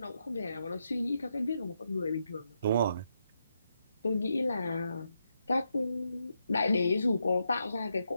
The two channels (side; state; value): both; inverted; correlation -0.82